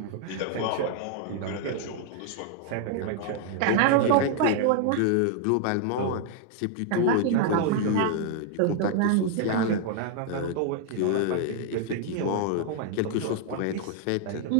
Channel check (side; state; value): both; different; correlation 0.00